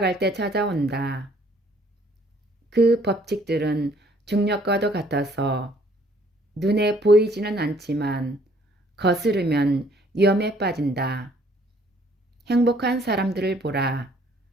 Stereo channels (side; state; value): both; normal; correlation 0.61